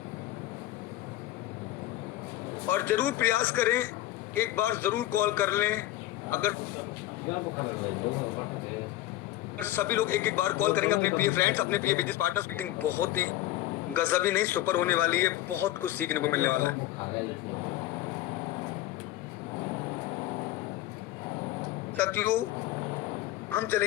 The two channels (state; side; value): quieter; right; 15.1 dB